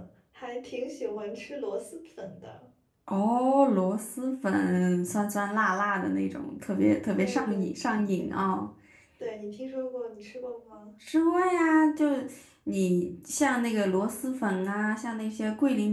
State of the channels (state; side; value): identical; both; correlation 1.00